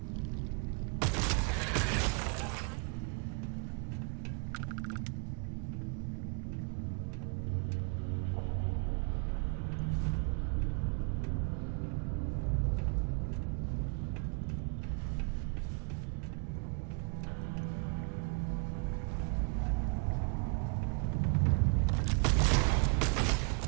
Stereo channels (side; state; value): left; quieter; 37.5 dB